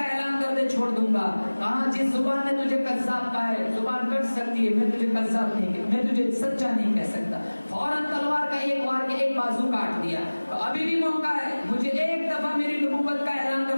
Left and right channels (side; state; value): both; inverted; correlation -1.00